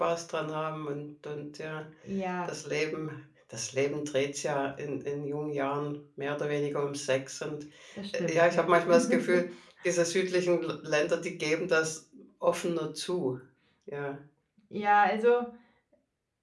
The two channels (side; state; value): both; identical; correlation 1.00